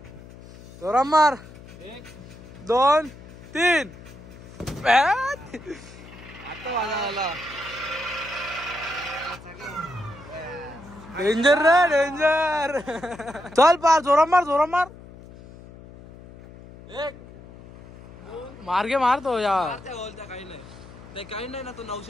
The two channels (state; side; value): noise; left; hum, 18 dB below the sound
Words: जोराम मार. 1 2 3. डेंजर रे डेंजर. चल पार जोरात मार. मार्गे मारतो यार. काही नाही ना तो